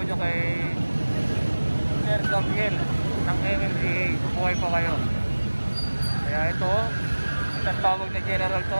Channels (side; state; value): both; inverted; correlation -1.00